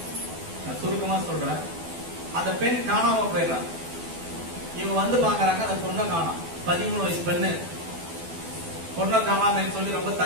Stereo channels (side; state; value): left; late; 12 ms